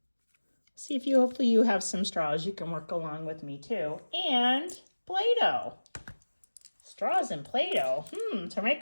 See if hopefully you have some straws. You can work along with me too. And Play-Doh. Straws and Play-Doh. To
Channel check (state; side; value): inverted; both; correlation -1.00